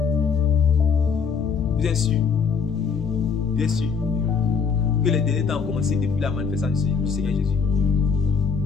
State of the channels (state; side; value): quieter; right; 5.8 dB